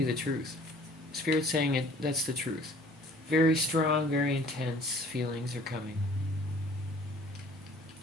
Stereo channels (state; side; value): normal; both; correlation 0.53